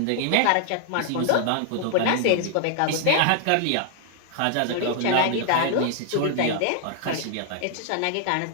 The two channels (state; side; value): different; both; correlation 0.00